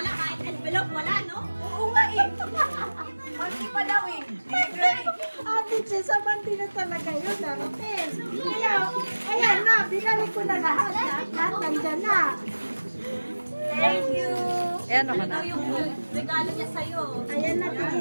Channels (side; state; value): both; inverted; correlation -1.00